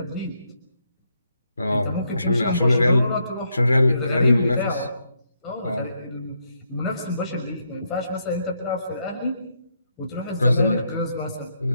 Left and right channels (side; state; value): both; inverted; correlation -0.78